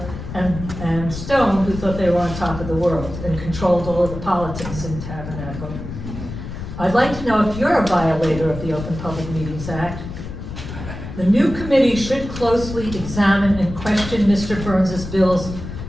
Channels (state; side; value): noise; left; rumble, 9 dB below the sound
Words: and Stone, who thought they were on top of the world and controlled all of the politics in Tabernacle. I'd like to know if you're a violator of the Open Public Meetings Act. The new committee should closely examine and question Mr. Burns's bills